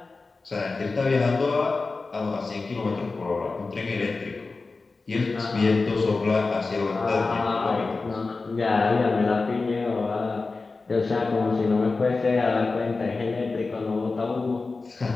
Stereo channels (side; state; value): right; quieter; 3.9 dB